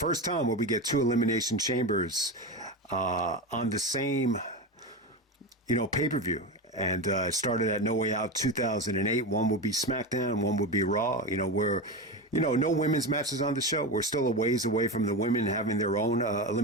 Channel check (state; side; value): normal; both; correlation 0.20